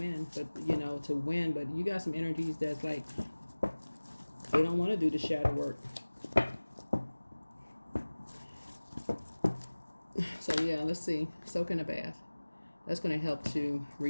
but but you got some energies that's like they don't want to do the shadow work. So yeah, let's see. Soak in a bath. That's going to help to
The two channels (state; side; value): inverted; both; correlation -1.00